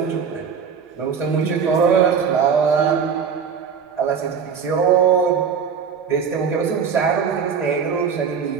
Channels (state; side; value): quieter; left; 6.6 dB